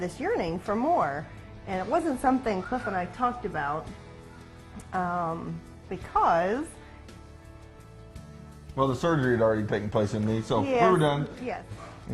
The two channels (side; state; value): both; identical; correlation 1.00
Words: yearning for more. And it wasn't something Cliff and I talked about because... Well, the surgery had already taken place in me, so Yes, we were done. Yes.